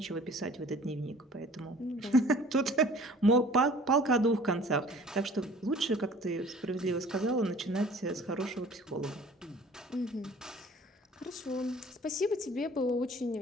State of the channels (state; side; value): normal; both; correlation 0.49